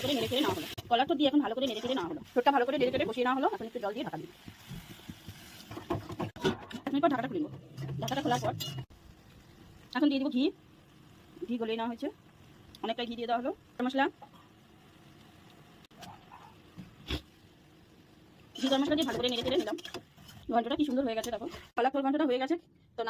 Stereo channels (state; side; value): identical; both; correlation 1.00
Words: করে নেড়ে চেড়ে নেওয়া হলো। কলার থোড় দিয়ে এখন ভালো করে নেড়ে চেড়ে নেওয়া হলো, থোড়টা ভালো করে নেড়ে চেড়ে বসিয়ে নেওয়া হলো। এখন একটু জল দিয়ে ঢাকা দিব। এরপর ঢাকাটা খুলব। ঢাকাটা খোলার পর এখন দিয়ে দেবো ঘি, ঘি গলিয়ে নেওয়া হয়েছে, অনেকটা ঘি দিয়ে দেওয়া হলো। মশলা, ঘি গরম মশলা দিয়ে ভালো করে নেড়ে চেড়ে নিলাম। ঘন্টটা কি সুন্দর হয়ে গেছে, দেখো কলার থোড় ঘন্টটা হয়ে গেছে। তো